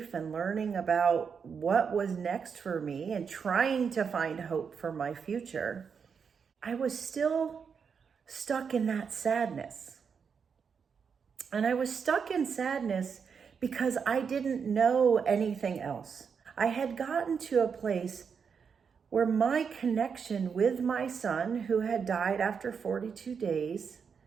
and learning about what was next for me and trying to find hope for my future, I was still stuck in that sadness. And I was stuck in sadness because I didn't know anything else. I had gotten to a place where my connection with my son, who had died after 42 days,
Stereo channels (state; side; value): quieter; left; 6.3 dB